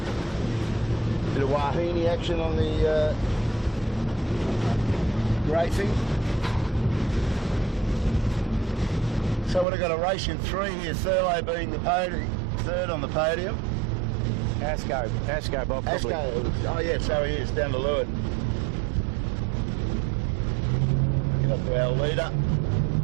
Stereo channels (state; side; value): drops out; left; at 9.7 s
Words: Bit of Wahine action on the racing. So we've got a race in 3 here, Thurlow being the podium, 3rd on the podium. Asco, Bob. Probably. Asco, oh yeah, so he is, down to Leeward. Get up to our leader.